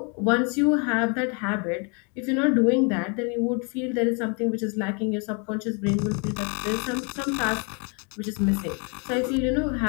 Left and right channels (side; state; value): right; quieter; 35.1 dB